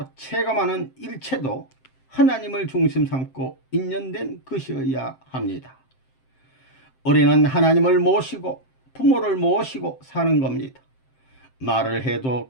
체감하는 일체도 하나님을 중심 삼고 인연된 것이어야 합니다. 우리는 하나님을 모시고 부모를 모시고 사는 겁니다. 말을 해도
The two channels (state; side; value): late; right; 7.7 ms